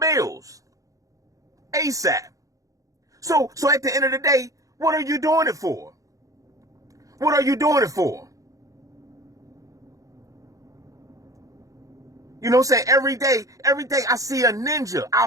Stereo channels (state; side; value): late; left; 0.16 ms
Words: ASAP. So at the end of the day, what are you doing it for? What are you doing it for? You know what I'm saying? Every day I see a ninja